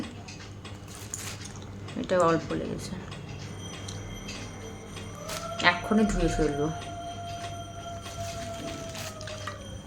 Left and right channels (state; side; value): identical; both; correlation 1.00